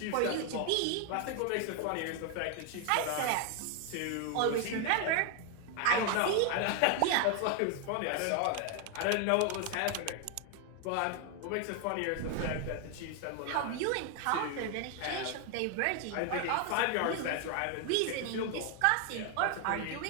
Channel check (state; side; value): different; both; correlation 0.01